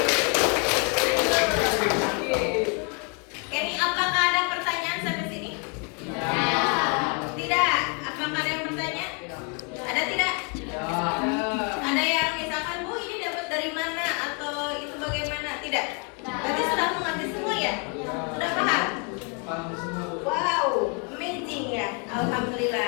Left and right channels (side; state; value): right; quieter; 36.5 dB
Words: Ini apakah ada pertanyaan sampai sini? Tidak. Apakah ada yang bertanya? Ada tidak? Ada yang misalkan